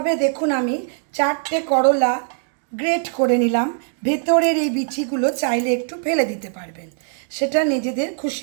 দেখুন আমি 4টে করলা গ্রেট করে নিলাম। ভেতরের এই বিচিগুলো চাইলে একটু ফেলে দিতে পারবেন, সেটা নিজেদের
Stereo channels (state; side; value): silent; left; 65 dB below the other